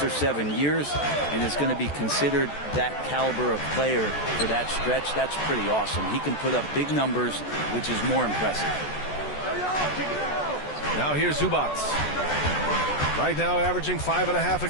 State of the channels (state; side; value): late; right; 14 ms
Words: or 7 years and is going to be considered that caliber of player for that stretch. That's pretty awesome. He can put up big numbers, which is more impressive. Now here's Zubac. Right now averaging 5.5 a